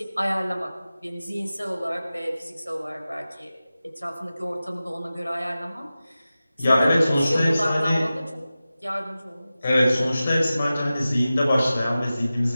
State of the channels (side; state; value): both; inverted; correlation -0.95